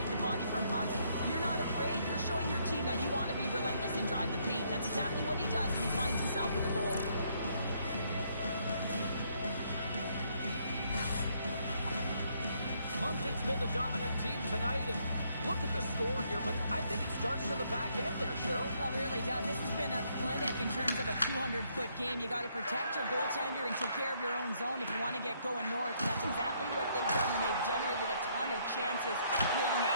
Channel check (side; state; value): both; inverted; correlation -0.70